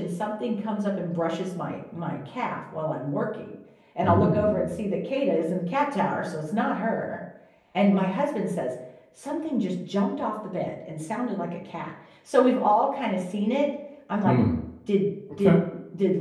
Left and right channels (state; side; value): identical; both; correlation 1.00